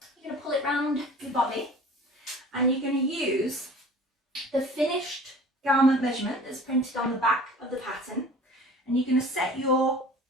going to pull it round your body, and you're going to use the finished garment measurement that's printed on the back of the pattern, and you're going to set your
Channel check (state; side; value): normal; both; correlation 0.45